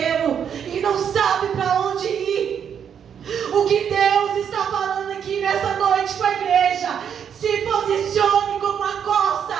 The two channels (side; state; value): left; quieter; 8.1 dB